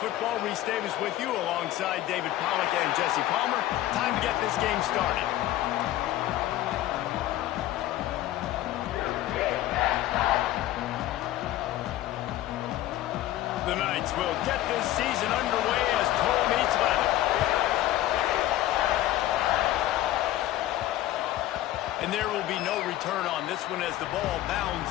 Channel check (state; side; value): quieter; right; 14.5 dB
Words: Football. Reese Davis with you alongside David Pollack and Jesse Palmer. Time to get this game started. The Knights will get this season underway as toe meets leather. And there will be no return on this one as the ball bounds